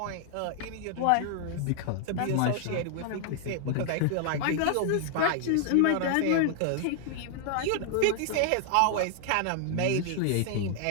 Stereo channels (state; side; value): different; both; correlation 0.00